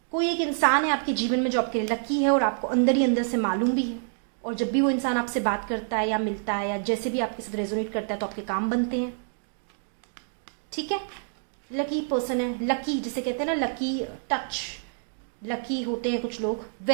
कोई एक इंसान है आपके जीवन में जो आपके लिए लकी है, और आपको अंदर ही अंदर से मालूम भी है। और जब भी वो इंसान आपसे बात करता है या मिलता है या जैसे भी आपके साथ रेजोनेट करता है, तो आपके काम बनते हैं, ठीक है। लकी पर्सन है, लकी जिसे कहते हैं ना, लकी टच, लकी होते हैं कुछ लोग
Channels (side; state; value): left; silent; digital silence